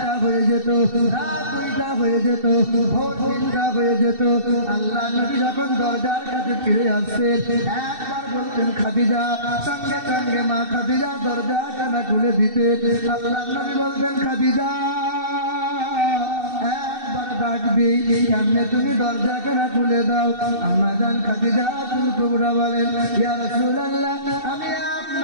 হয়ে যেত, রাত 2টা হয়ে যেত, ভোর 3টা হয়ে যেত। আল্লাহ নবী যখন দরজার কাছে ফিরে আসতেন, একবার বলতেন খাদিজা, সঙ্গে সঙ্গে মা খাদিজা দরজা টানা খুলে দিতেন। আল্লাহ নবী বলতেন, খাদিজা, ডাকবি, কেমনে তুমি দরজা কেনা খুলে দাও? আম্মা জান খাদিজাতুল কুবরা বলেন, ইয়া রাসূলুল্লাহ, আমি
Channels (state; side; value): late; left; 2.7 ms